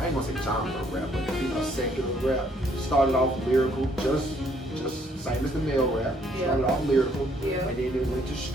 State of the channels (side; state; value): both; normal; correlation 0.67